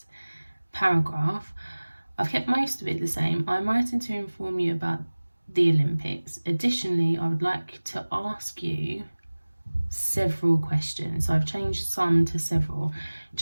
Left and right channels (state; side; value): inverted; both; correlation -1.00